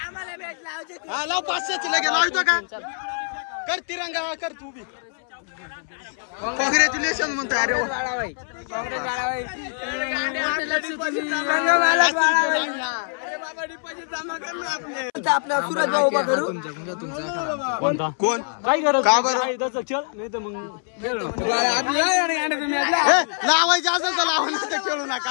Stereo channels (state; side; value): silent; right; 63 dB below the other